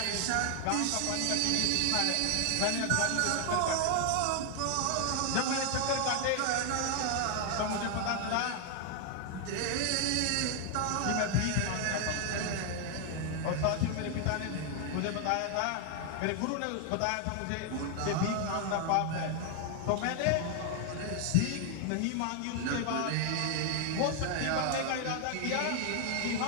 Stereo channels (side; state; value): both; different; correlation 0.00